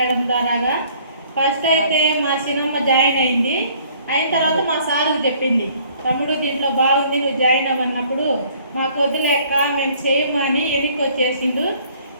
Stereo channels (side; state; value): both; inverted; correlation -0.58